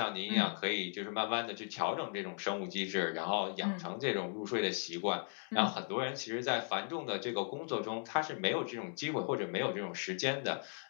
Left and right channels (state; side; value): silent; right; 53 dB below the other